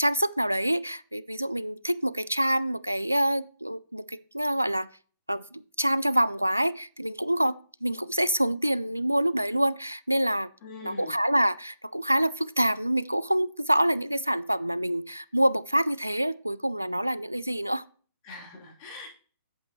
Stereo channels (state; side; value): inverted; both; correlation -0.95